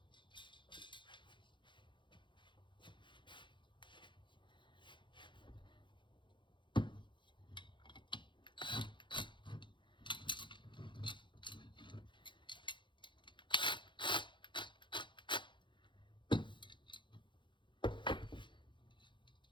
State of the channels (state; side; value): late; right; 0.23 ms